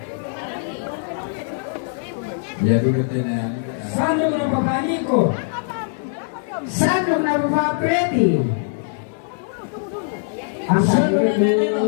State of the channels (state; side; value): silent; right; digital silence